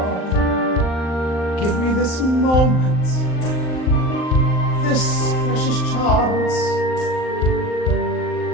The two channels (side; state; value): right; late; 39 ms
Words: Give me this moment, this precious chance.